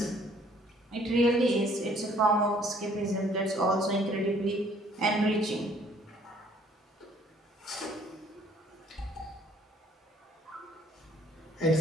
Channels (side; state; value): both; normal; correlation 0.60